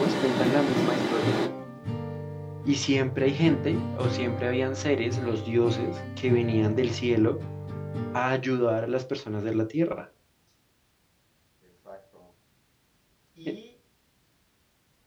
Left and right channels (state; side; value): identical; both; correlation 1.00